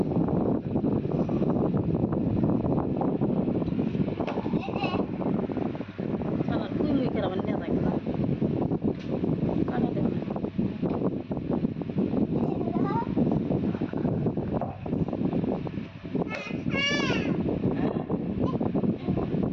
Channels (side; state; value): both; identical; correlation 1.00